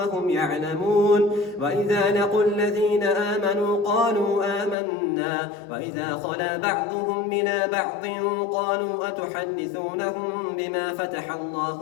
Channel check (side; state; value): right; drops out; at 4.8 s